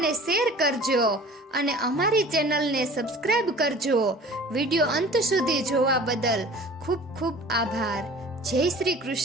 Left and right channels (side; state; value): both; normal; correlation 0.44